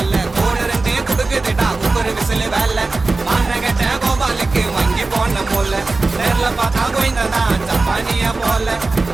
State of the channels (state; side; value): quieter; left; 3.5 dB